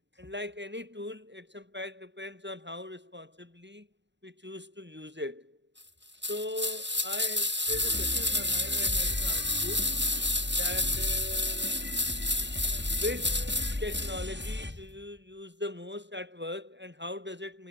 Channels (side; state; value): left; late; 0.52 ms